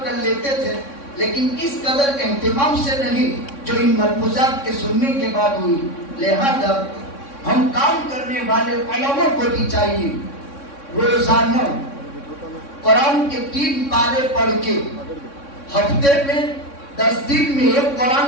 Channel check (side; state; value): right; late; 3.6 ms